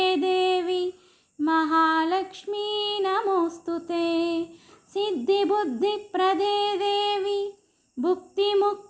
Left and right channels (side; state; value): both; identical; correlation 1.00